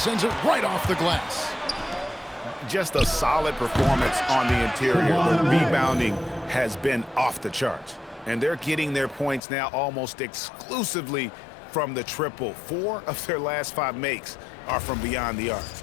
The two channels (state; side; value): drops out; right; at 9.4 s